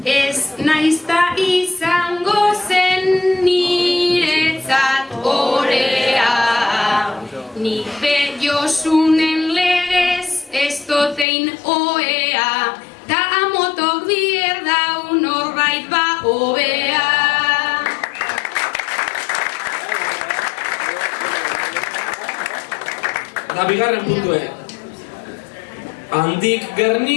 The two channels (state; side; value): drops out; right; at 11.2 s